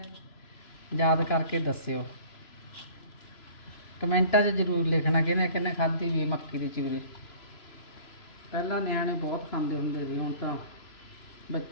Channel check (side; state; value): right; late; 3.0 ms